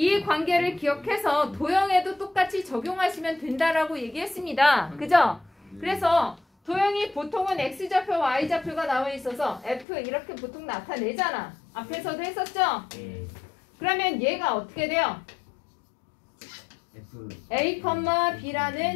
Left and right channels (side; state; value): right; drops out; at 9.9 s